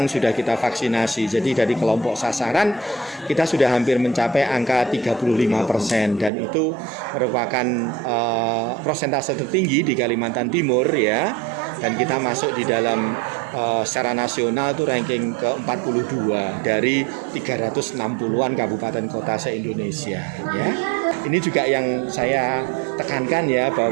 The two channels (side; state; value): left; drops out; at 6.3 s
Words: sudah kita vaksinasi. Jadi dari kelompok sasaran kita sudah hampir mencapai angka 35%, dan itu merupakan persentase tertinggi di Kalimantan Timur ya. Dan kita masuk di dalam secara nasional itu ranking ke-42 dari 360-an kabupaten kota se-Indonesia ya. Ini juga yang saya tekankan ya,